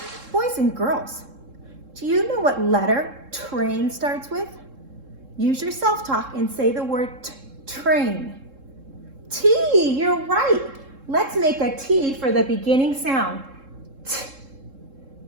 Boys and girls, do you know what letter train starts with? Use your self-talk and say the word train. T, you're right. Let's make a T for the beginning sound. T.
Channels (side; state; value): left; late; 3.7 ms